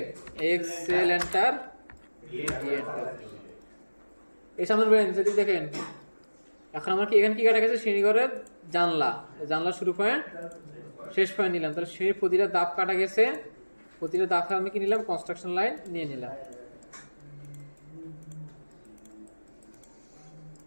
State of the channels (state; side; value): inverted; both; correlation -1.00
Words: এক্সেল এন্টার, এই সামনে যদি দেখেন এখন আমার কি এখানে কি কাটা গেছে, শ্রেণীঘরের জানলা, জানলা শুরু পয়েন্ট শেষ পয়েন্ট নিলাম, তাহলে শ্রেণীর প্রতিটা দাব কাটা গেছে, প্রতিটা দাব আমি কি নিলাম কনস্ট্রাকশন লাইন নিয়ে নিলাম।